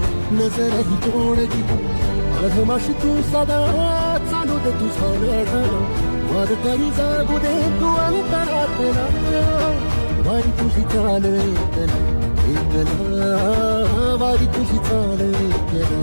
नजरही तोडती. अधमाशी तू सदा चालू दे तुझा लढा, वारकरी जागू दे तू अंतरातला. वारी तुझी चाल एकला, वारी तुझी चाल एकला,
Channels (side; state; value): both; inverted; correlation -1.00